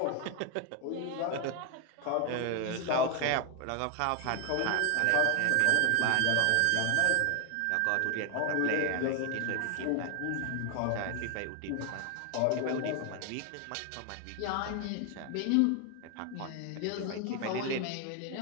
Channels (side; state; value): both; different; correlation 0.01